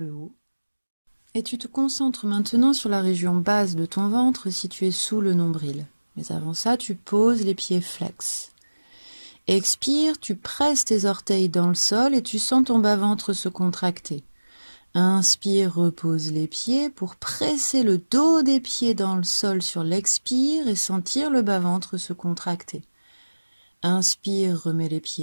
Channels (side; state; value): both; inverted; correlation -1.00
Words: haut. Et tu te concentres maintenant sur la région basse de ton ventre située sous le nombril. Mais avant ça, tu poses les pieds flex. Expire, tu presses tes orteils dans le sol et tu sens ton bas-ventre se contracter. Inspire, repose les pieds pour presser le dos des pieds dans le sol sur l'expire et sentir le bas-ventre se contracter. Inspire, remets les